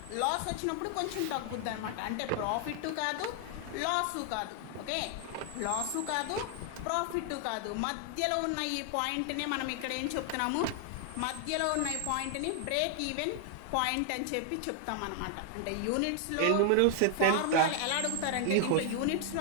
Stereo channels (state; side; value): different; both; correlation 0.00